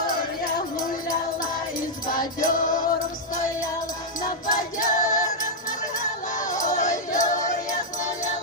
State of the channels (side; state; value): both; normal; correlation -0.04